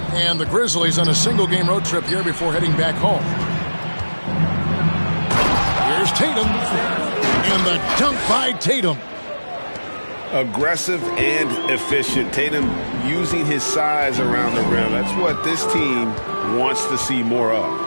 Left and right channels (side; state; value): both; inverted; correlation -1.00